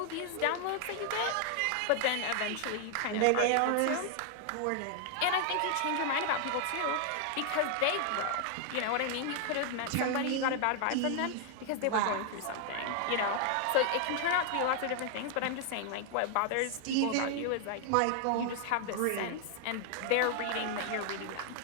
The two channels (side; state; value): both; different; correlation 0.00